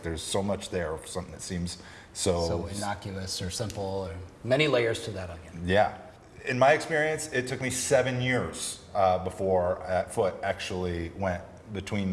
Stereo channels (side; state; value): both; identical; correlation 1.00